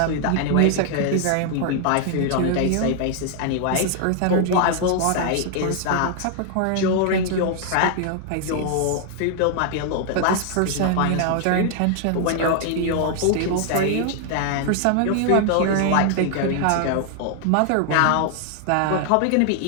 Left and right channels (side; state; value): both; different; correlation 0.00